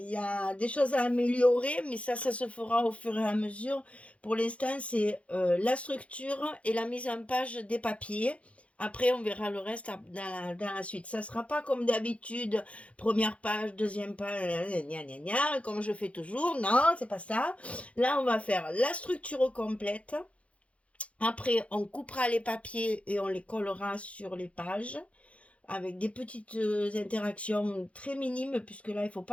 y a des choses à améliorer, mais ça se fera au fur et à mesure. Pour l'instant, c'est la structure et la mise en page des papiers. Après, on verra le reste dans la suite. Ça ne sera pas comme d'habitude, première page, deuxième page, gna gna gna, comme je fais toujours. Non, c'est pas ça. Là, on va faire la structure complète. Après, on coupera les papiers et on les collera sur les pages avec des petites interactions très minimes, puisque là, il ne faut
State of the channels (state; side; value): late; right; 0.063 ms